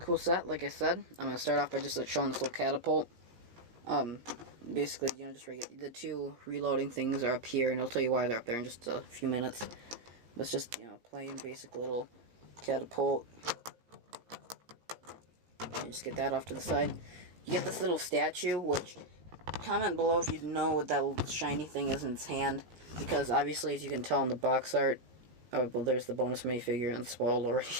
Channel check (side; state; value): left; late; 17 ms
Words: set, like I said. I'm going to start off by just showing this little catapult. Basically, you know, just the two reloading things are up here, and I'll tell you why they're up there in just a few minutes. But it's just, you know, plain basic little catapult. You just get that off to the side. You get this little statue, which, comment below if you know what that little shiny thing is in its hand, because obviously, as you can tell in the box art, oh, well, there's the bonus minifigure and spoiled already.